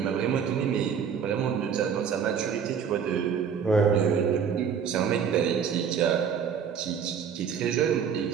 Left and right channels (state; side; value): quieter; left; 7.3 dB